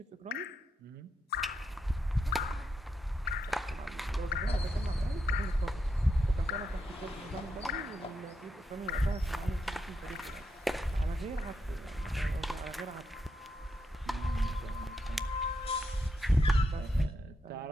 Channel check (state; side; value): normal; both; correlation 0.83